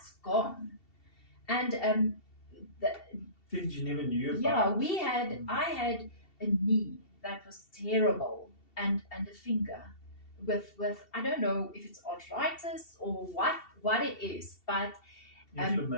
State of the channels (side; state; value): right; late; 2.7 ms